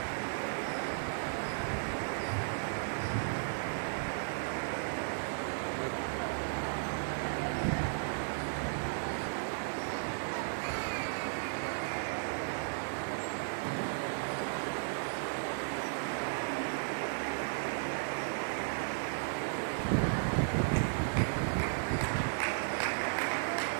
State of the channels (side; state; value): left; silent; 54 dB below the other